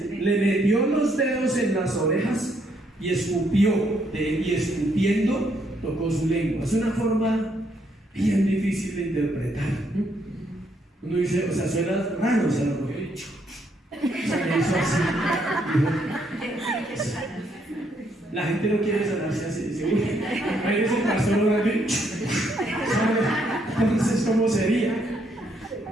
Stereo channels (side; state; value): both; normal; correlation 0.73